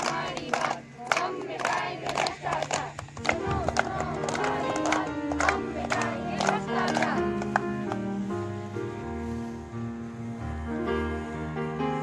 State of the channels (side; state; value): both; identical; correlation 1.00